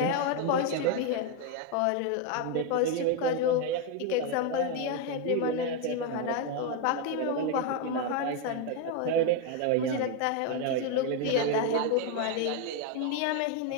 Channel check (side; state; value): both; different; correlation 0.01